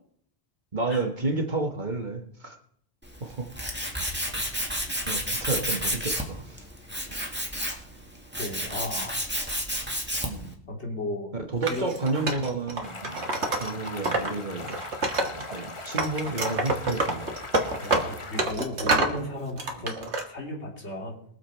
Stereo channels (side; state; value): both; normal; correlation -0.02